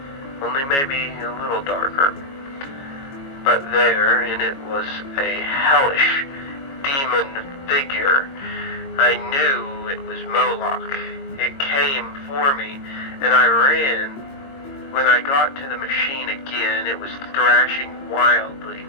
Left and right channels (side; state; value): right; late; 22 ms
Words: only maybe a little darker. But there in it was a hellish demon figure. I knew it was Moloch. It came for me, and I ran. When I got to the machine again, it was thrashing wildly,